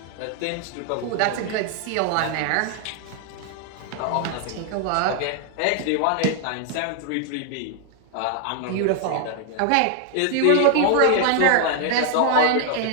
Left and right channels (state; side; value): different; both; correlation 0.00